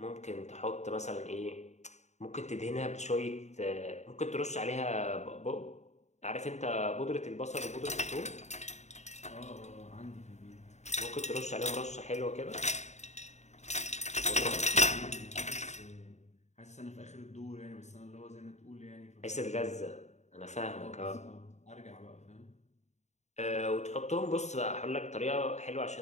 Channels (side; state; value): right; late; 0.33 ms